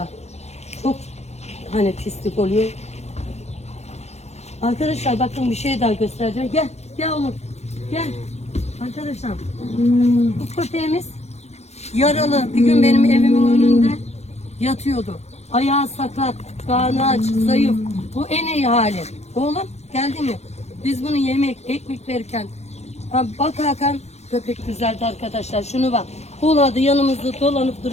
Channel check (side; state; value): right; late; 0.31 ms